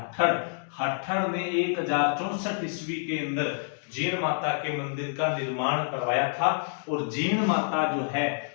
हट्ठड़ ने 1064 ईस्वी के अंदर जीण माता के मंदिर का निर्माण करवाया था। और जीण माता जो है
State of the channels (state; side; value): silent; right; digital silence